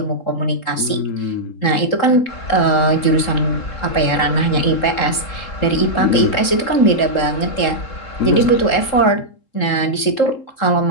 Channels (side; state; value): right; late; 3.7 ms